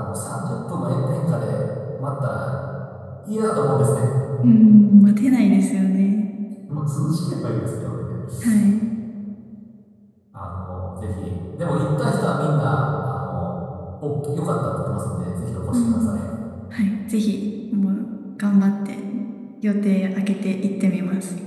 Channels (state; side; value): identical; both; correlation 1.00